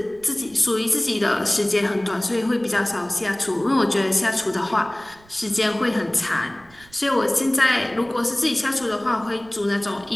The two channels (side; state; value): right; noise; rumble, 27 dB below the sound